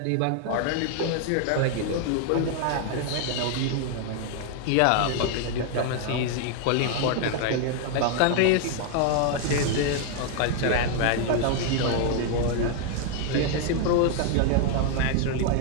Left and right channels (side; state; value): both; different; correlation 0.00